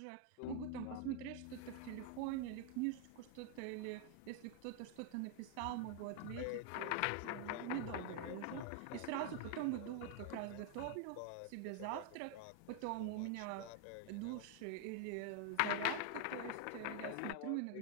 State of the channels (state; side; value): different; both; correlation 0.00